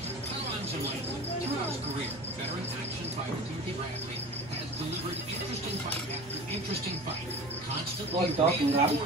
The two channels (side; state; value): both; normal; correlation 0.37